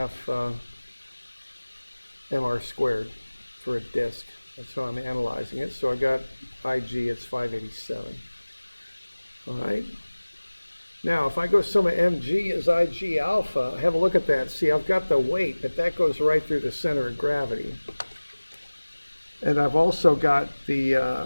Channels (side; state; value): both; inverted; correlation -1.00